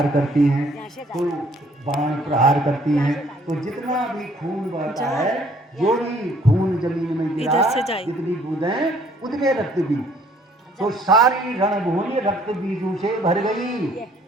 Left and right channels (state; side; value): normal; both; correlation 0.61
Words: करती हैं, तो बाण प्रहार करती हैं, तो जितना भी खून बहता है, जो भी खून जमीन में गिरा, जितनी बूंदें उतने रक्त बीज, तो सारी रणभूमि रक्त बीजों से भर गई।